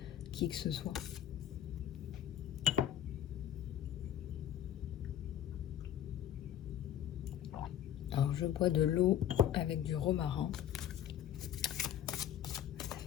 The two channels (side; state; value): right; quieter; 10.5 dB